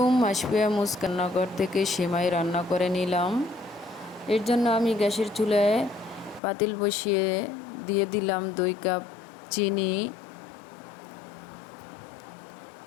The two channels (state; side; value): drops out; right; at 6.4 s